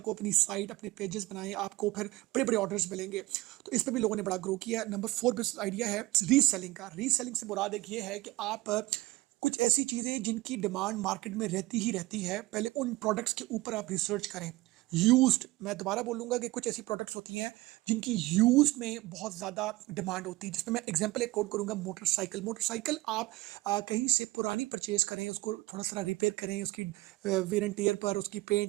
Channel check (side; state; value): left; quieter; 19.7 dB